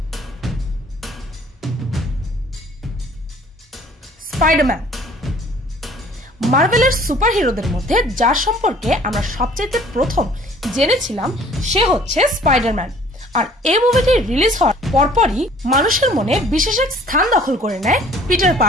স্পাইডারম্যান মার্ভেলের সুপার হিরোদের মধ্যে যার সম্পর্কে আমরা সবচেয়ে প্রথম জেনেছিলাম সে হচ্ছে স্পাইডারম্যান। আর এই মুভিটি রিলিজ হওয়ার পরপরই মানুষের মনে বিশেষ এক স্থান দখল করে নেয় পিটার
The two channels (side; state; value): both; normal; correlation 0.54